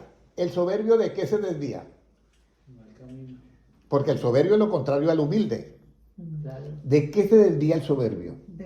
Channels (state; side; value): identical; both; correlation 1.00